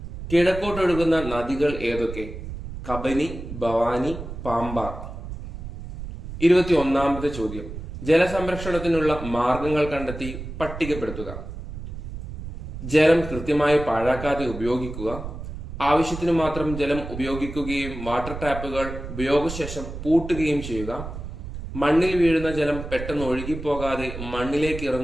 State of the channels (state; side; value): noise; right; rumble, 9 dB below the sound